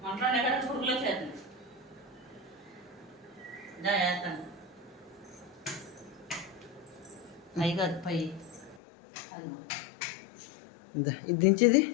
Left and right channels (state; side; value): drops out; right; at 8.8 s